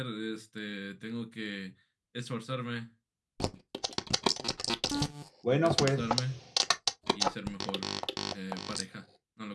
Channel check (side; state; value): both; identical; correlation 1.00